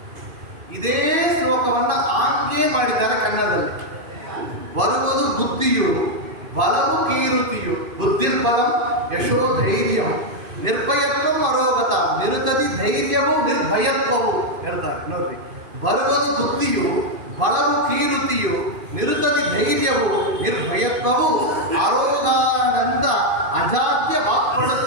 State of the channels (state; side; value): late; left; 2.5 ms